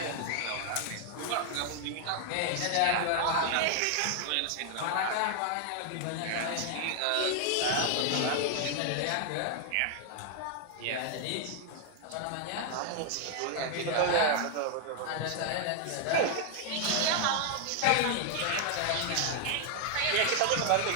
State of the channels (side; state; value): both; different; correlation 0.00